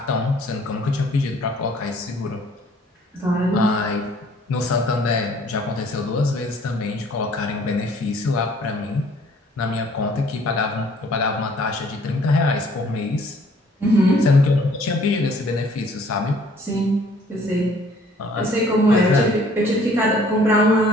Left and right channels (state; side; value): normal; both; correlation 0.57